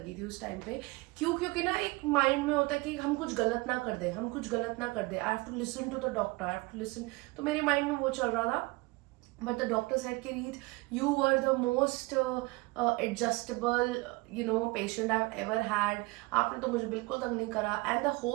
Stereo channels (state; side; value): quieter; left; 23.8 dB